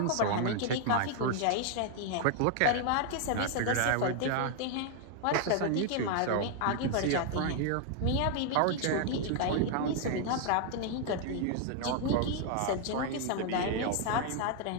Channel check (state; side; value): different; both; correlation 0.00